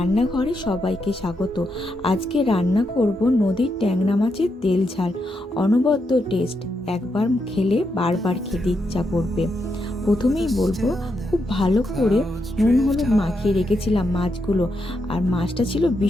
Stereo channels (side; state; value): both; normal; correlation 0.82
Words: সবাইকে স্বাগত। আজকে রান্না করব নদীর ট্যাংরা মাছের তেল ঝাল। অনবদ্য টেস্ট, একবার খেলে বারবার খেতে ইচ্ছা করবে। প্রথমেই বলবো, খুব ভালো করে নুন হলুদ মাখিয়ে রেখেছিলাম মাছগুলো। আর মাছটা ছিল